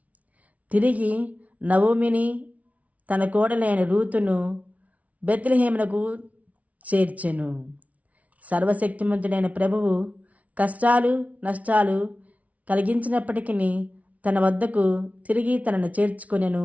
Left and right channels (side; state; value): left; late; 0.068 ms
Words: తిరిగి నవోమిని తన కోడలైన రూతును బెత్లెహేమునకు చేర్చెను. సర్వశక్తిమంతుడైన ప్రభువు కష్టాలు నష్టాలు కలిగించినప్పటికీ తన వద్దకు తిరిగి తనను చేర్చుకొనెను